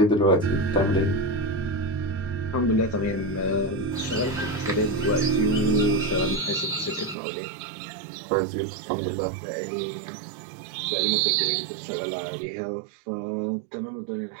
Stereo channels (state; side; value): drops out; left; at 7.2 s